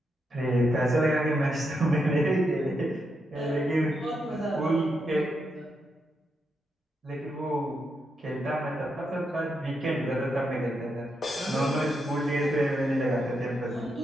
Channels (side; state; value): both; normal; correlation 0.82